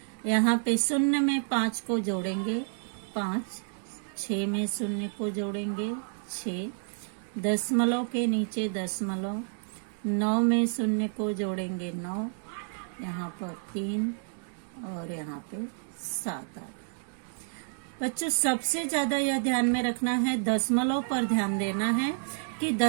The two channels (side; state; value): left; silent; digital silence